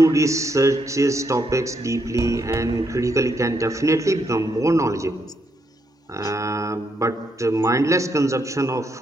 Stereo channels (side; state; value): both; normal; correlation 0.77